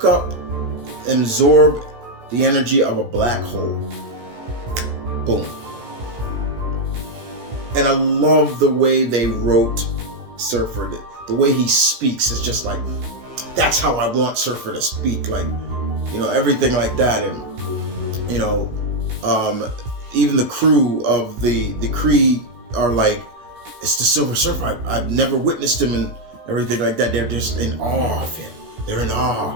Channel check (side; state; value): left; late; 17 ms